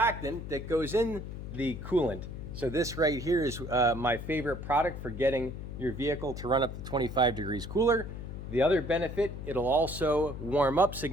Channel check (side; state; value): left; noise; hum, 8 dB below the sound